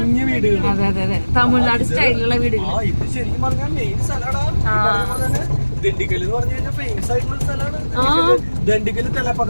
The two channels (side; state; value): both; inverted; correlation -1.00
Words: അതെ അതെ. തമിഴ്നാട് സ്റ്റൈലിലുള്ള വീടുകൾ. ദണ്ഡിക്കൽ എന്ന് പറഞ്ഞു കഴിഞ്ഞാൽ ഫേമസ് ആയിട്ടുള്ള സ്ഥലമാണ്. ദണ്ഡിക്കൽ